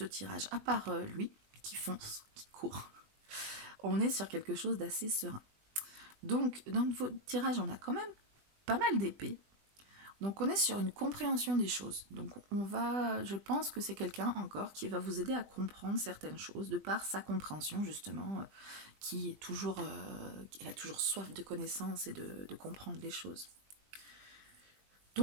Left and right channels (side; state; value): left; late; 20 ms